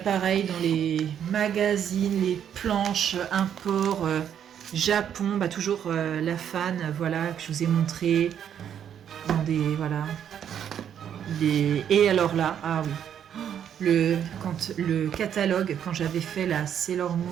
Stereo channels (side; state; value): left; quieter; 9.1 dB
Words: dans les magazines, les planches, import, Japon, bah toujours la fan, voilà, que je vous ai montré. Dans des, voilà. Et alors là, ah oui, le catalogue, quand j'avais fait la Sailor